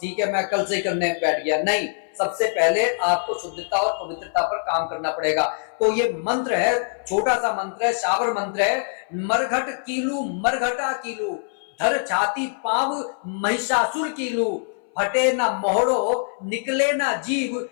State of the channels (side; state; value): right; silent; 61 dB below the other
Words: ठीक है मैं कल से करने बैठ गया। नहीं, सबसे पहले आपको शुद्धता और पवित्रता पर काम करना पड़ेगा। तो ये मंत्र है, छोटा सा मंत्र है, शाबर मंत्र है। मरघट कीलू मरघटा कीलू, धर छाती पाव महिषासुर कीलू, फटे ना मोहड़ो निकले ना जीव,